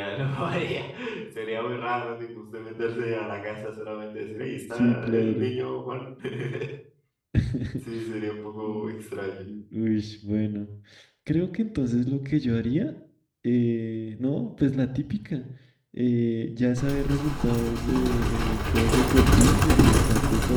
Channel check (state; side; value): identical; both; correlation 1.00